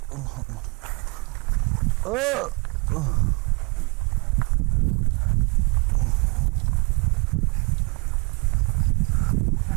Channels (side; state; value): left; quieter; 32.4 dB